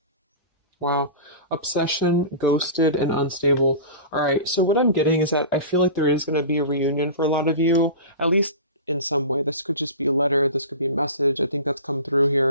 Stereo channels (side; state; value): both; inverted; correlation -0.33